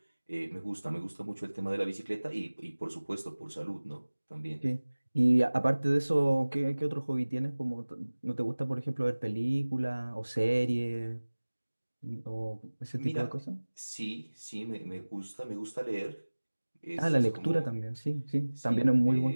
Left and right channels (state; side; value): inverted; both; correlation -1.00